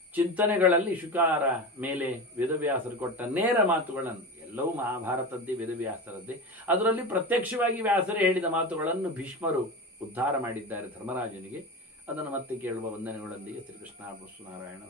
ಚಿಂತನೆಗಳಲ್ಲಿ ಶುಕಾರ ಮೇಲೆ ವೇದವ್ಯಾಸರು ಕೊಟ್ಟ ನೇರ ಮಾತುಗಳನ್ನು, ಎಲ್ಲವೂ ಮಹಾಭಾರತದ್ದೇ ವೇದವ್ಯಾಸರದ್ದೇ, ಅದರಲ್ಲಿ ಪ್ರತ್ಯಕ್ಷವಾಗಿ ವ್ಯಾಸರೇ ಹೇಳಿದ ಮಾತುಗಳನ್ನು ಭೀಷ್ಮರು ಉದ್ಧಾರ ಮಾಡಿದ್ದಾರೆ ಧರ್ಮರಾಜನಿಗೆ. ಅದನ್ನು ಮತ್ತೆ ಕೇಳುವ ವಂದನೆಗಳೊಂದಿಗೆ ಶ್ರೀಕೃಷ್ಣ ನಾರಾಯಣ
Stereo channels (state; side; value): normal; both; correlation 0.26